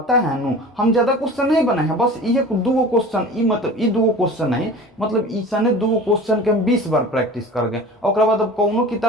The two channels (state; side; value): normal; both; correlation 0.38